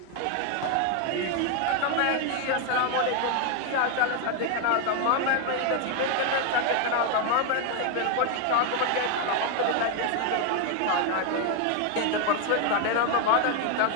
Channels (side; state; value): both; different; correlation 0.01